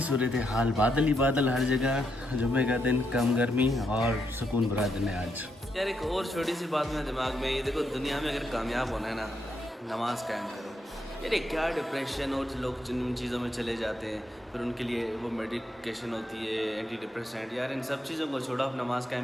सूरत हाल, बादल ही बादल हर जगह। जुम्मे का दिन, कम गर्मी और सुकून भरा दिन है आज। यार एक और छोटी सी बात मेरे दिमाग में, ये देखो दुनिया में अगर कामयाब होना है ना, नमाज कायम करो। यार क्या डिप्रेशन, और लोग जिन चीज़ों में चले जाते हैं फिर उनके लिए वो मेडिकेशन होती है, एंटी डिप्रेसेंट। यार इन सब चीज़ों को छोड़ो, आप नमाज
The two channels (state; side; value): normal; both; correlation 0.80